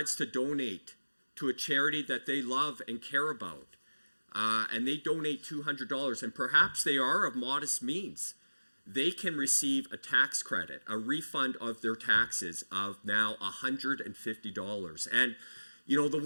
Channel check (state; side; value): inverted; both; correlation -1.00